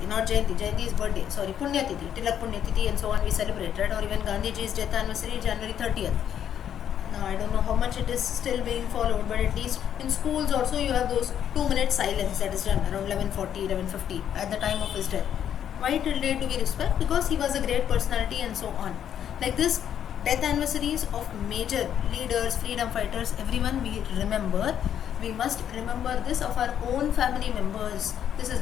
not Jayanti. Jayanti is birthday. Sorry, Punya Tithi, Tilak Punya Tithi, and so on. We celebrate, right? Or even Gandhiji's death anniversary, January 30th. Now I don't know how much it is still being followed, but at least in schools also you have those 2-minute silence that is done around 11:40, 11:50 at the time of his death. Why till date do we respect? Because he was a great personality and so on. Like this, death anniversaries of major leaders, freedom fighters, everyone we remember. We must remember this of our own family members. This is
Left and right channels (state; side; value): quieter; right; 9.5 dB